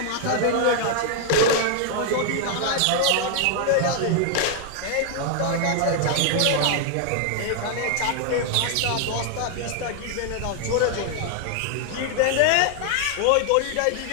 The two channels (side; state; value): both; different; correlation 0.00